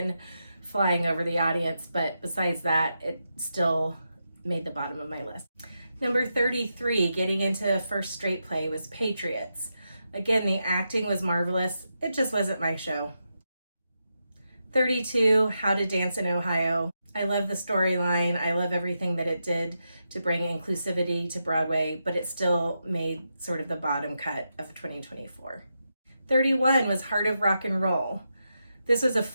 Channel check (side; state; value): both; inverted; correlation -0.86